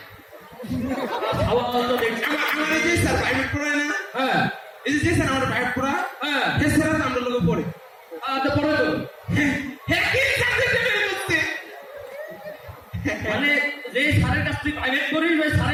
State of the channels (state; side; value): identical; both; correlation 1.00